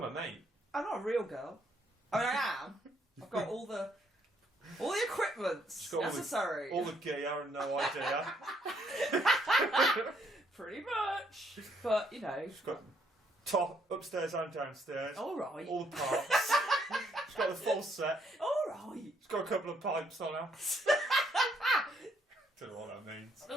mate. I'm not a real girl. I mean, I am. I've got all the equipments necessary. All the gear and no idea. Pretty much. But, She's got top, upstairs and downstairs. All right. All the parts. She's got the full set. All right. She's got a couple of pipes on her. Don't know what that means.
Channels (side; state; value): both; normal; correlation 0.71